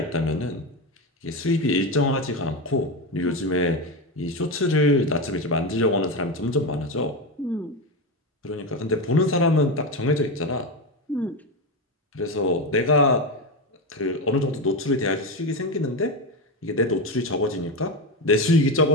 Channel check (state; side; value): normal; both; correlation 0.15